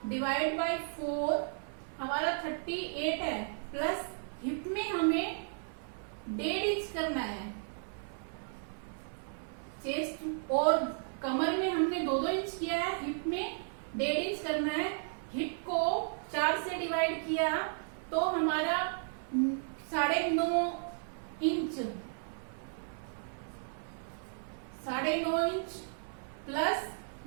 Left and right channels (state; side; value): silent; left; 55 dB below the other